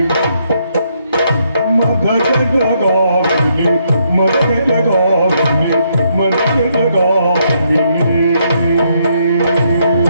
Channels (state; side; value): inverted; both; correlation -0.74